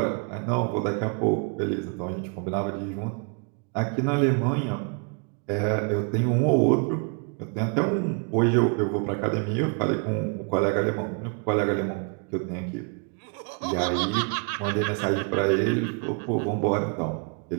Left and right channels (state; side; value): quieter; left; 37.3 dB